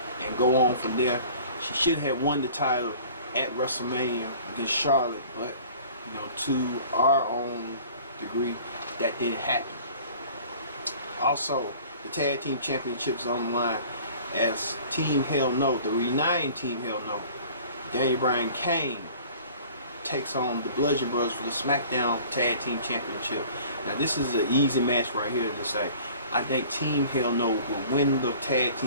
and go on from there. She should have won the title at WrestleMania against Charlotte, but to our own degree, that didn't happen. Also, the Tag Team Championships on the line as Team Hell No, the reuniting Team Hell No, Daniel Bryan Kane takes on the Bludgeon Brothers for the SmackDown Tag Team Championship. Now this is an easy match right here to say. I think Team Hell No will win the tag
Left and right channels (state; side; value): inverted; both; correlation -0.47